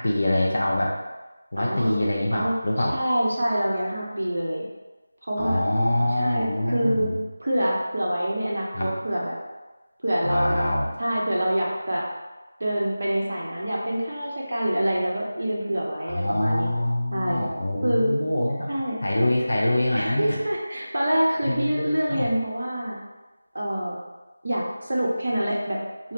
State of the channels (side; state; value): both; inverted; correlation -0.96